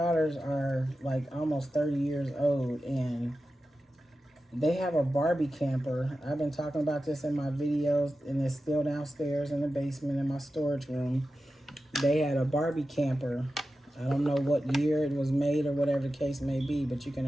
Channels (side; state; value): both; normal; correlation 0.92